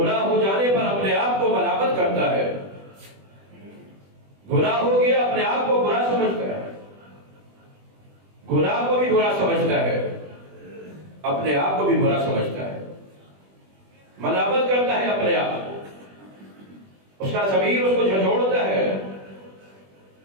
ہو جانے پر اپنے آپ کو ملامت کرتا ہے، گناہ ہو گیا اپنے آپ کو برا سمجھتا ہے، گناہ کو بھی برا سمجھتا ہے، اپنے آپ کو بھی برا سمجھتا ہے، ملامت کرتا ہے اپنے آپ کو، اس کا ضمیر اس کو جھنجھوڑتا ہے۔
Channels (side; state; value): left; late; 20 ms